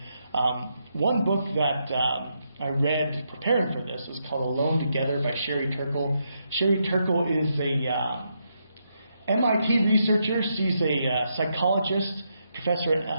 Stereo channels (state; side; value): inverted; both; correlation -0.80